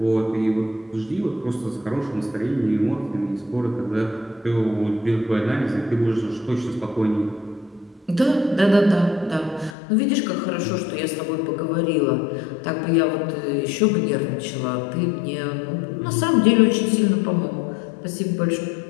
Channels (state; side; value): drops out; right; at 9.8 s